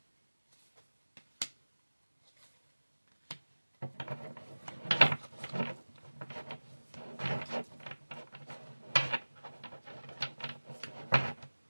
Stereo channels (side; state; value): both; inverted; correlation -1.00